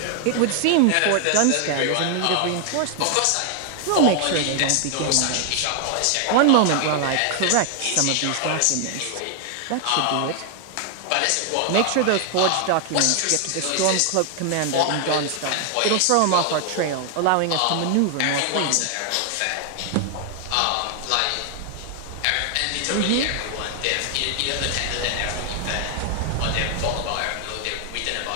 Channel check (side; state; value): both; different; correlation 0.00